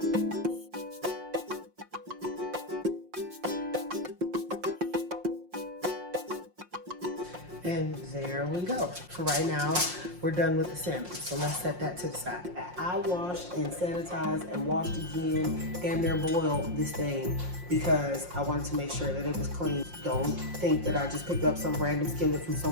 And there we go. For right now, we're done with the salmon. So let's set that to the side. I washed and sanitized and washed again and then boiled this thing because I wanted to make sure that it was clean. Don't think that I just picked up some random skillet from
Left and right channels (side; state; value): left; late; 5.6 ms